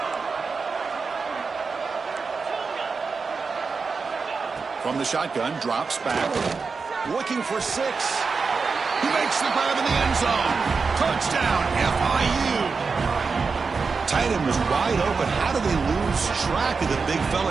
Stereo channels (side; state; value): left; quieter; 4.8 dB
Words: From the shotgun, drops back. Looking for 6. He makes the grab in the end zone. Touchdown, FIU. Tight end was wide open. How do they lose track of the big